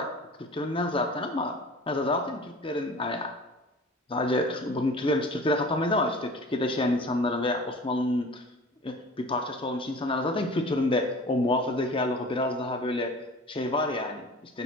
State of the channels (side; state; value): both; normal; correlation 0.41